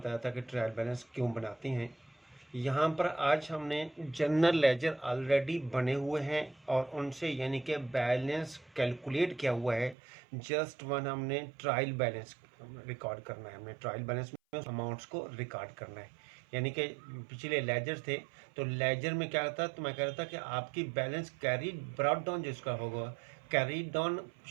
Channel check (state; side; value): drops out; left; at 10.0 s